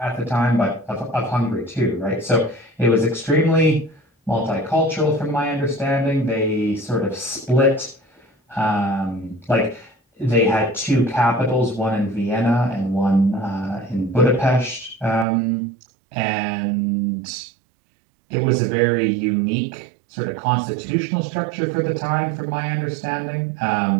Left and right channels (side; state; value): left; drops out; at 15.2 s